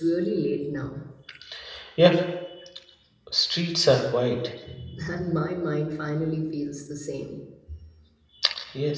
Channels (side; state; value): both; identical; correlation 1.00